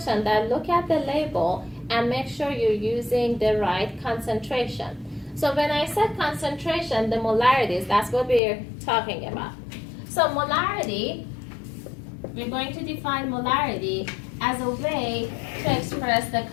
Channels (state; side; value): drops out; right; at 8.4 s